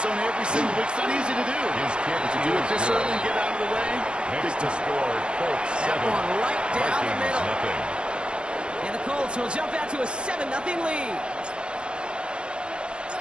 zone every single week. It's not easy to do. But to do it this early and get out of the way, big score, Colts 7. That one right down the middle. And the Colts will jump out to a 7-0 lead.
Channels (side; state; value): left; late; 0.054 ms